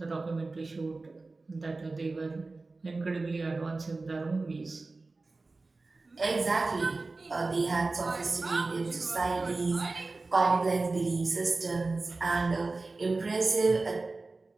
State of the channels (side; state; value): left; quieter; 3.5 dB